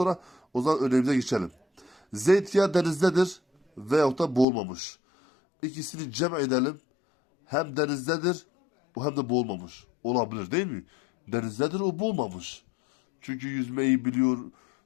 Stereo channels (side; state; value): right; drops out; at 4.5 s